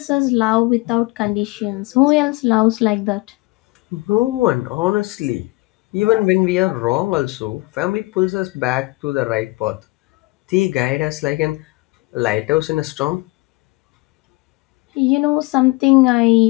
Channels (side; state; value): right; quieter; 23.4 dB